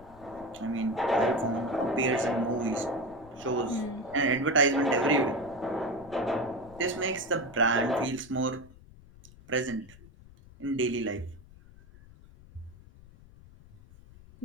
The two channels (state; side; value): noise; left; rumble, 21 dB below the sound